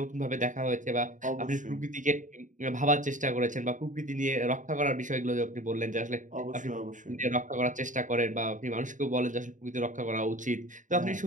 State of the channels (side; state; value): left; late; 0.37 ms